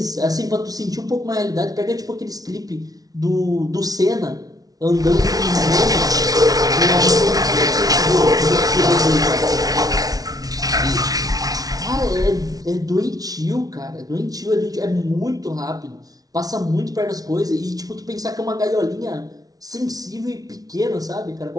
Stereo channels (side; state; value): left; late; 0.18 ms